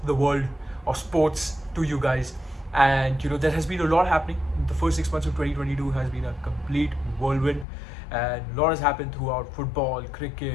the world of sports to you guys, and there has been a lot happening. The first 6 months of 2022 has been a complete whirlwind, and a lot has happened throughout football,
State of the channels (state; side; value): drops out; right; at 7.7 s